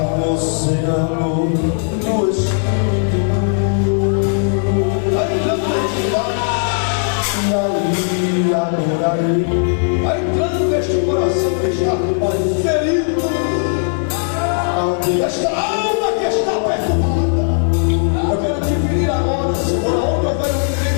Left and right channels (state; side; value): silent; right; digital silence